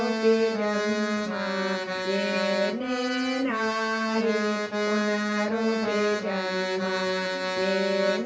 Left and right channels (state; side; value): identical; both; correlation 1.00